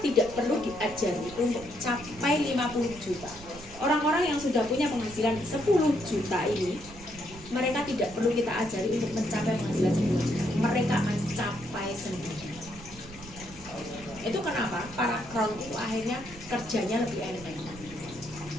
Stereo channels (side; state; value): right; noise; rumble, 17 dB below the sound